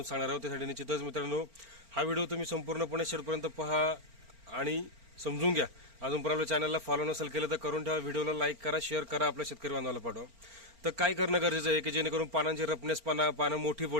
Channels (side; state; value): left; late; 4.4 ms